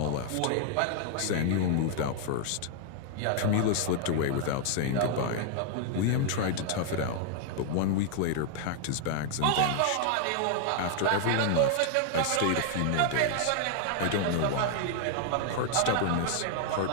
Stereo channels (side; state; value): both; different; correlation 0.00